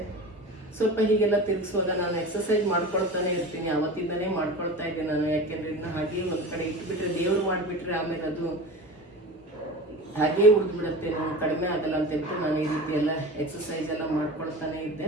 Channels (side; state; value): both; normal; correlation 0.32